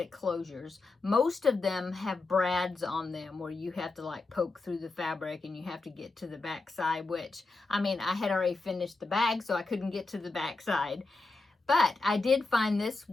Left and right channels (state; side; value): quieter; right; 3.6 dB